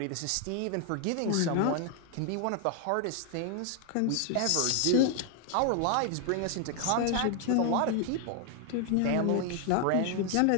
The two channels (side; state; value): both; different; correlation 0.00